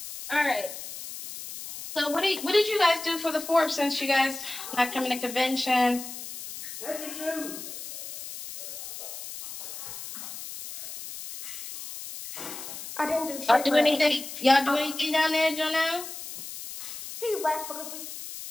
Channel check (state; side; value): noise; left; hiss, 10 dB below the sound